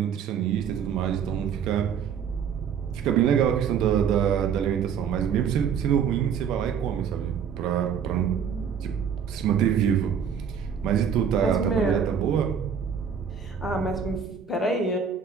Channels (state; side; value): quieter; left; 7.4 dB